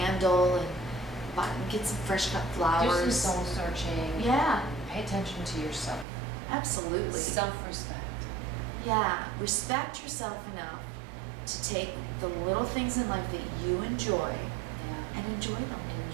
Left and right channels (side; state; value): left; drops out; at 6.1 s